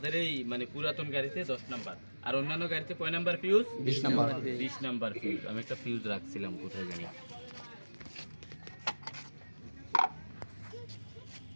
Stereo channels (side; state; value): both; inverted; correlation -1.00